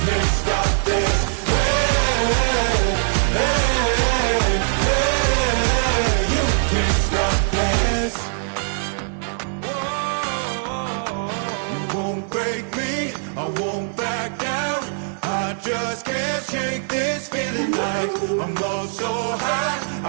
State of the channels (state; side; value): silent; left; digital silence